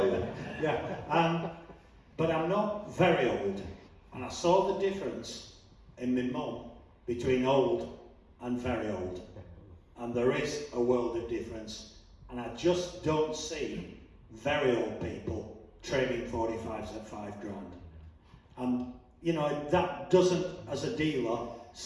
you that. Yeah. But I'm not very old, and I saw the difference in my mum between old and very old. And there is a world of difference, and I just don't see very old people trading 45s at 5 grand. And you know, that doesn't, as a dealer,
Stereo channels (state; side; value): identical; both; correlation 1.00